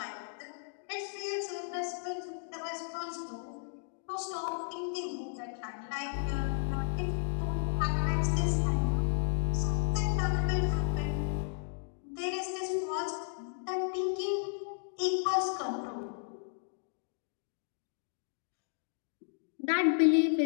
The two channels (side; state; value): right; silent; digital silence